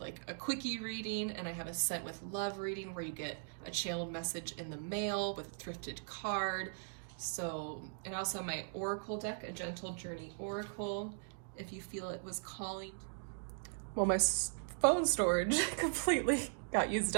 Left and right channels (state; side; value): silent; left; digital silence